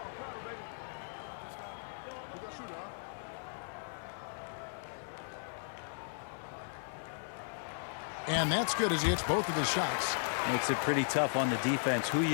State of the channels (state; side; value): silent; right; 54 dB below the other